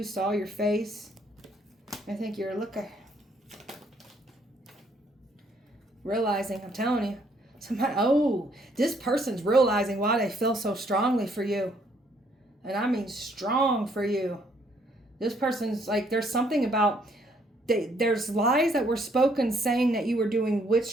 saw your face. I think you're looking. Realizing, I'm telling you. This person's realizing why they feel so strongly for you. And I mean strong for you. This person's like, there's something about, there's lies that were spoken saying that you were doing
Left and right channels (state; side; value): normal; both; correlation 0.67